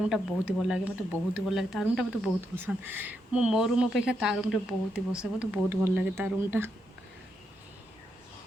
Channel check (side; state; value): both; normal; correlation 0.81